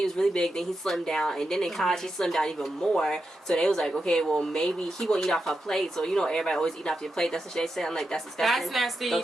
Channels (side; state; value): both; normal; correlation 0.87